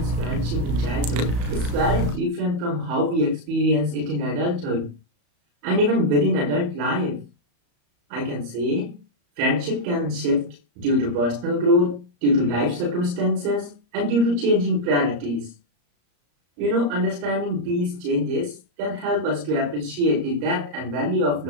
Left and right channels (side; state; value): left; late; 34 ms